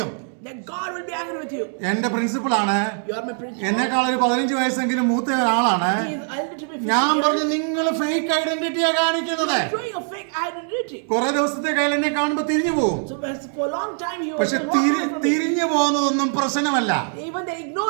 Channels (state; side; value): silent; left; 60 dB below the other